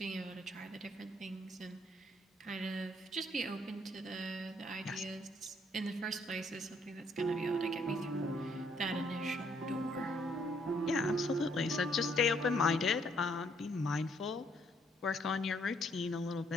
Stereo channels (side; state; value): both; normal; correlation 0.68